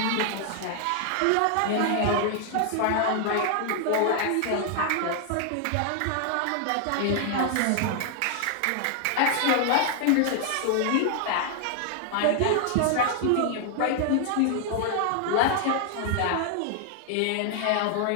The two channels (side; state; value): both; different; correlation 0.00